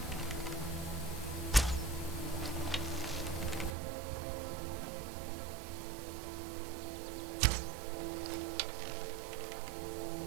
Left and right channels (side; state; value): left; drops out; at 3.8 s